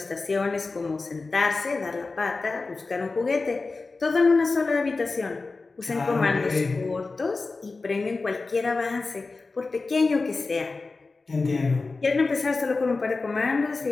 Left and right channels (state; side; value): quieter; right; 3.8 dB